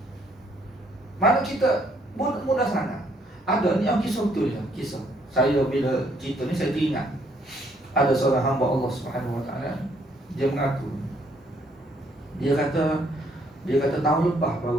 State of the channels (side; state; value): both; normal; correlation 0.68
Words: Mana kita mudah sangat. Ada ni kisah betul ya, kisah. Saya bila cerita ni saya teringat. Ada seorang hamba Allah Subhanahu Wa Taala, dia mengaku. Dia kata tahun lepas baru